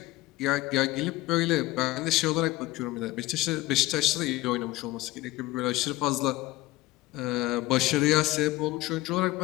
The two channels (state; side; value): quieter; right; 18.6 dB